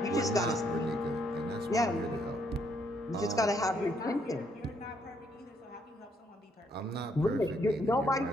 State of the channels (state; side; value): normal; both; correlation 0.72